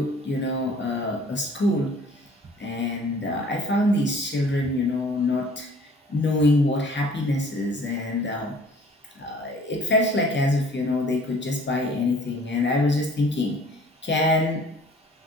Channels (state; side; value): normal; both; correlation 0.52